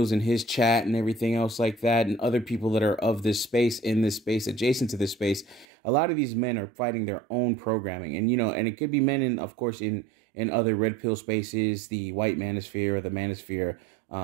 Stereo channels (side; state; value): left; drops out; at 5.7 s